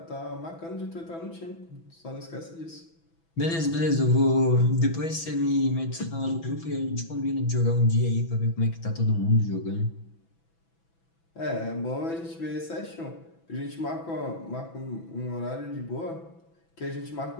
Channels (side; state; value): right; late; 6.0 ms